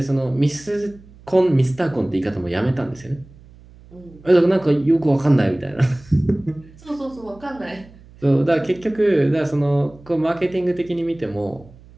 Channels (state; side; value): noise; right; hum, 23 dB below the sound